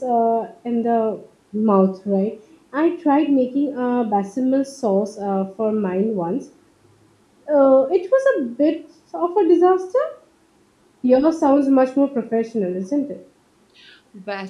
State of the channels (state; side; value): identical; both; correlation 1.00